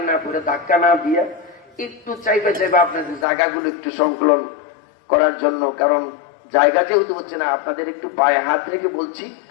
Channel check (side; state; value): right; drops out; at 3.2 s